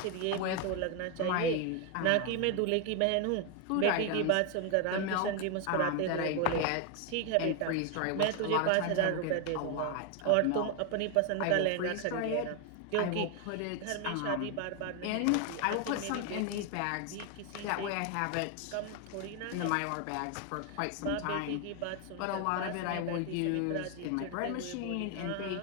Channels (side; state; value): both; different; correlation 0.01